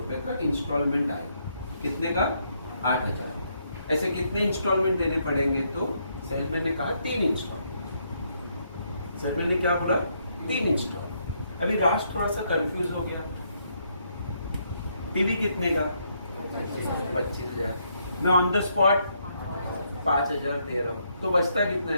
का इंस्टॉलमेंट आएगा। कितने का, 8,000। ऐसे कितने इंस्टॉलमेंट देने पड़ेंगे। तो सेल्समैन ने कहा 3 इंस्टॉलमेंट। सेल्समैन ने क्या बोला, 3 इंस्टॉलमेंट। अभी राज थोड़ा सा कंफ्यूज हो गया, टीवी कितने का 25,000, मैं ऑन द स्पॉट 5,000 दे रहा हूँ, तो बचता कितना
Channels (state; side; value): inverted; both; correlation -0.75